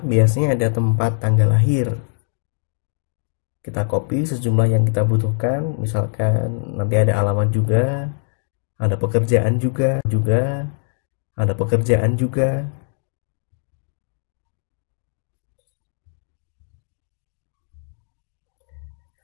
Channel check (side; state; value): right; silent; digital silence